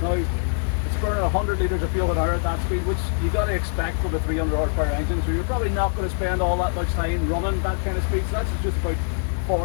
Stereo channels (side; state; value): right; silent; digital silence